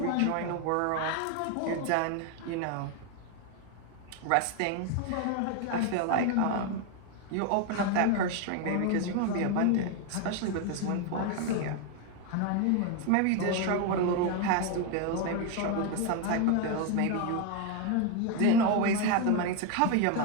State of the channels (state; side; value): different; both; correlation 0.01